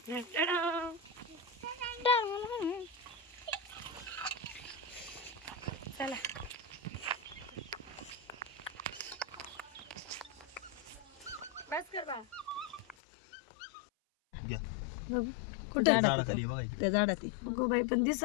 चला बस कर बा. बघू कुठे झाडाखाली बघा इकडे. त्या झाडात गो बाई पण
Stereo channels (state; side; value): drops out; right; at 13.0 s